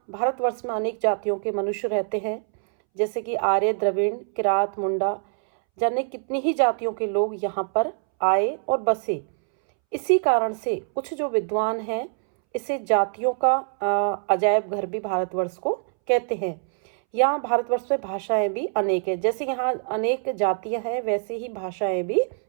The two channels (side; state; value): left; silent; 62 dB below the other